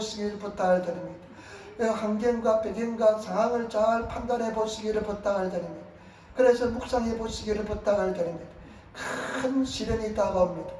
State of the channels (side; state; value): both; identical; correlation 1.00